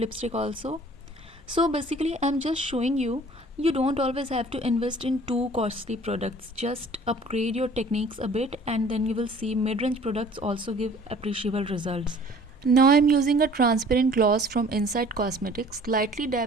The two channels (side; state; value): both; normal; correlation 0.51